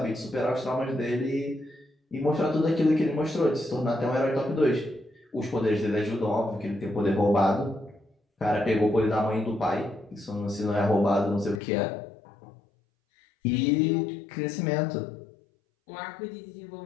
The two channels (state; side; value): drops out; right; at 11.6 s